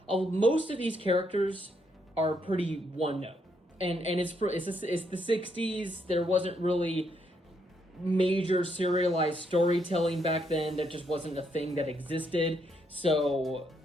most of these characters are pretty one note, and it's the 60s. There wasn't really major serialized storytelling back then. That just wasn't a thing that existed. So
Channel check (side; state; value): both; normal; correlation 0.75